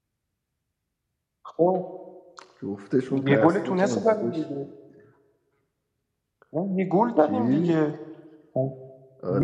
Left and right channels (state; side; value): identical; both; correlation 1.00